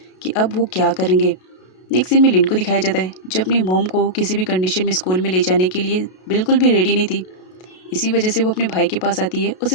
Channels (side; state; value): right; late; 32 ms